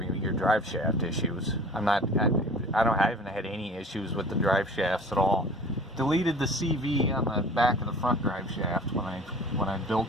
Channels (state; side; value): normal; both; correlation 0.44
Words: your drive shaft issues. I haven't had any issues with the drive shafts at all. Deleted the CV on the back of the front drive shaft when I